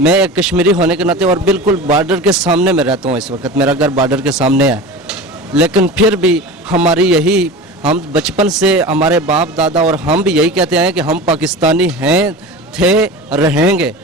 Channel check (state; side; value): normal; both; correlation 0.32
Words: मैं एक कश्मीरी होने के नाते और बिल्कुल बॉर्डर के सामने में रहता हूँ इस वक्त, मेरा घर बॉर्डर के सामने है, लेकिन फिर भी हमारी यही, हम बचपन से हमारे बाप दादा और हम भी यही कहते हैं कि हम पाकिस्तानी हैं, थे, रहेंगे,